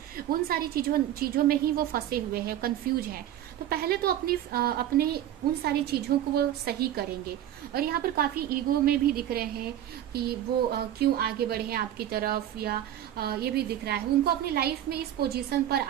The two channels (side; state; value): left; quieter; 11.6 dB